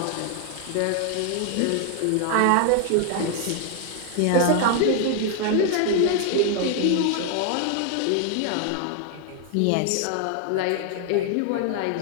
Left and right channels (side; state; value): both; different; correlation 0.00